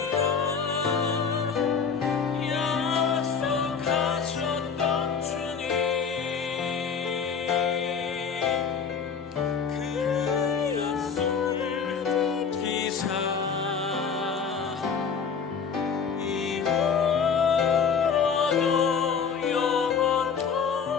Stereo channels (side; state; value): right; quieter; 6.2 dB